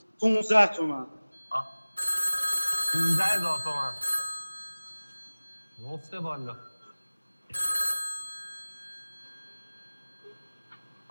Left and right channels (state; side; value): inverted; both; correlation -1.00